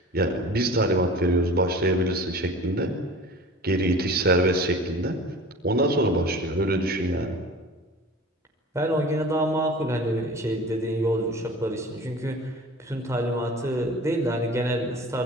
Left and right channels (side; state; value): both; normal; correlation 0.40